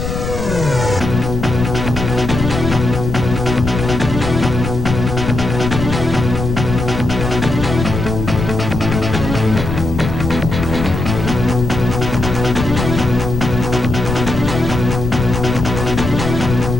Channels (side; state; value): left; noise; rumble, 4 dB below the sound